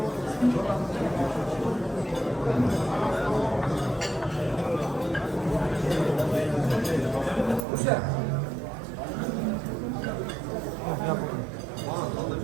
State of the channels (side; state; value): left; drops out; at 7.7 s